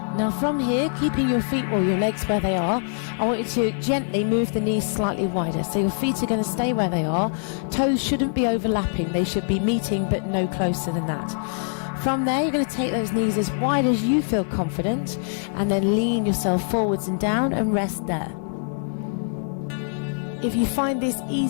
Now from here, keeping your feet or your legs where they are, I want you to gently move the knees slightly wider. So your feet are going to stay where they are. Toes shouldn't be overlapping. They should be meeting, but no closer than that. From there, you're going to take those knees as wide as you feel confident, and then lean yourself forwards and down and rest there. If you find this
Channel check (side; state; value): right; silent; digital silence